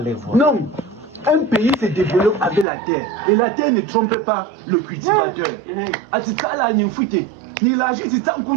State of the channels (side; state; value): left; drops out; at 2.7 s